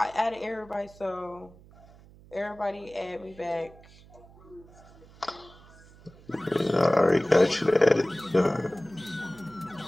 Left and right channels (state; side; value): noise; right; hum, 23 dB below the sound